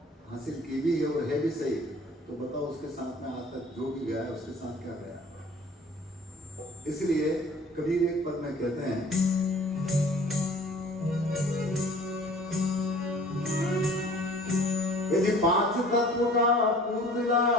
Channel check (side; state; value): both; normal; correlation 0.49